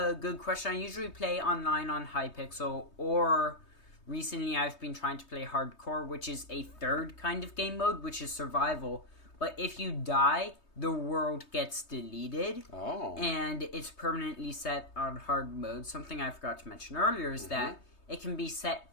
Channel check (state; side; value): late; right; 3.2 ms